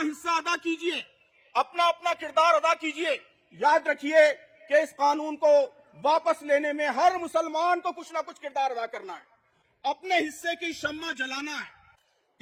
अदा कीजिए, अपना अपना किरदार अदा कीजिए। याद रखिए कि इस कानून को वापस लेने में हर मुसलमान को कुछ ना कुछ किरदार अदा करना है, अपने हिस्से की शम्मा जलाना है।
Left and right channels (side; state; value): both; identical; correlation 1.00